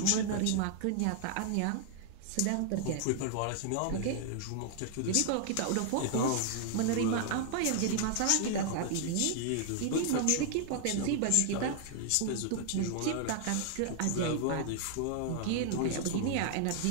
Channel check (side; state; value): both; different; correlation 0.00